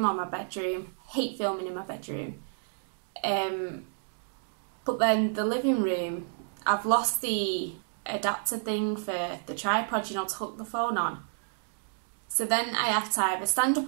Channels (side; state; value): left; silent; digital silence